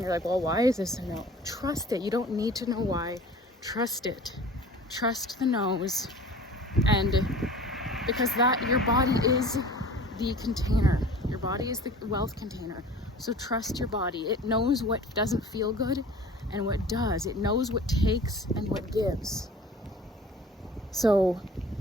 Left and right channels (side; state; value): both; normal; correlation 0.43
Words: You're like, well, why is this a no? Trust it. You don't need to know why. Trust it. Trust the no's. And because your body is the container. Your body is the wealth container. So trust your body. It knows what doesn't feel good and what does. It knows what takes and what gives. So